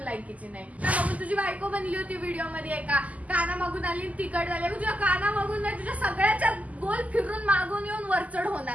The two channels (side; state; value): left; late; 0.074 ms